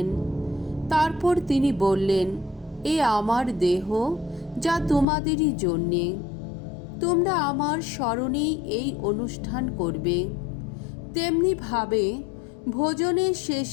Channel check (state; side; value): drops out; right; at 5.1 s